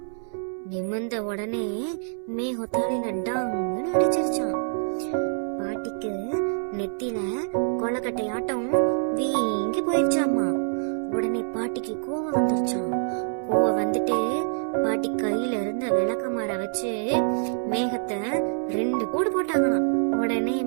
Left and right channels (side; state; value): left; silent; 61 dB below the other